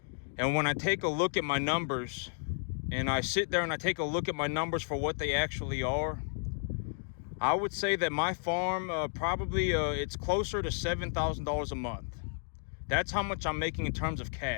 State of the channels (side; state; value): right; silent; digital silence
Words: And when I take a look at my numbers and I sit there and I take a look at my numbers for what they actually are, I would say that my farm probably it's closer to $7,000 a month. That's how much I'm making in terms of